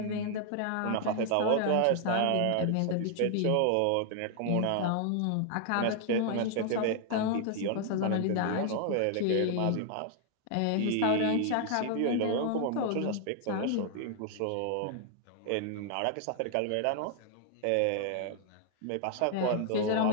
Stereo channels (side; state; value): both; different; correlation 0.00